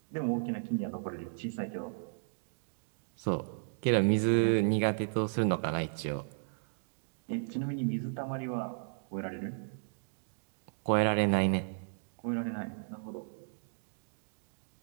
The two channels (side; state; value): left; silent; digital silence